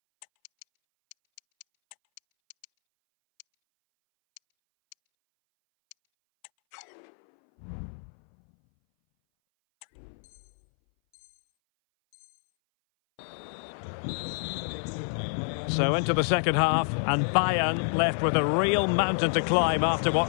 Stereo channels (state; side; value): silent; right; 60 dB below the other